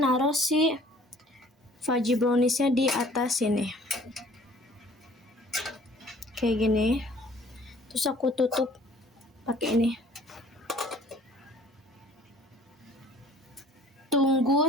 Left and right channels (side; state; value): both; normal; correlation 0.53